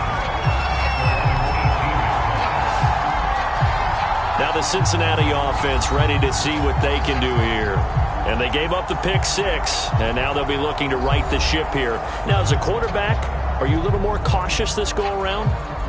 Now the Cincinnati offense ready to see what they can do here. And they gave up the pick 6, and now they'll be looking to right the ship here. Now, as a quarterback, are you a little more cautious this go-around?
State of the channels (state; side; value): identical; both; correlation 1.00